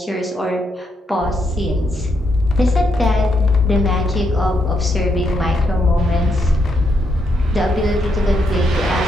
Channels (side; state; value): both; normal; correlation 0.78